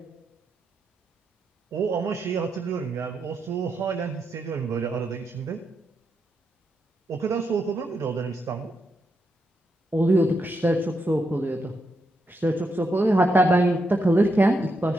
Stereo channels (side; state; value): both; normal; correlation 0.82